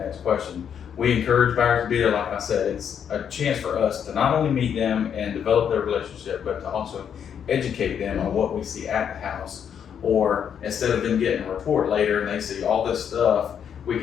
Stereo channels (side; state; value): right; quieter; 8.2 dB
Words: question. We encourage buyers to be there. Like I said, it's a chance for us to not only meet them and develop their relationship, but to also educate them on what we see at the house. Or instead of them getting a report later and they see all this stuff, we